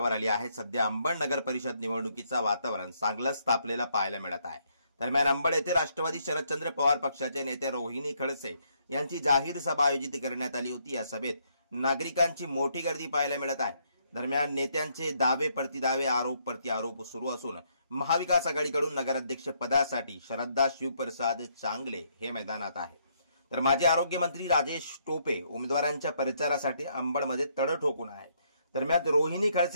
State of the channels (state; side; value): inverted; both; correlation -0.72